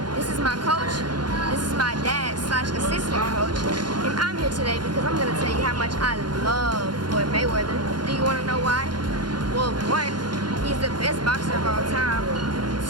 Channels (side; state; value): left; late; 0.71 ms